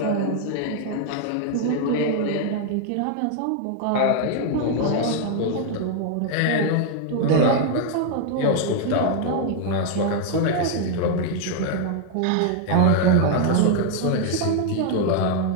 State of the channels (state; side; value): different; both; correlation 0.00